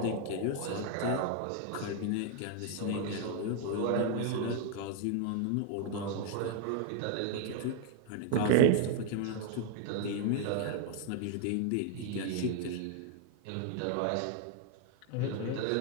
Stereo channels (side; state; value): both; different; correlation 0.00